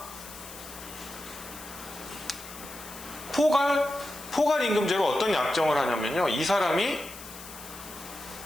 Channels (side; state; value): left; noise; hiss, 14 dB below the sound